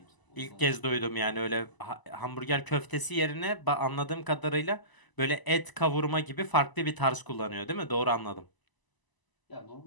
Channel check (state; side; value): late; right; 1.0 ms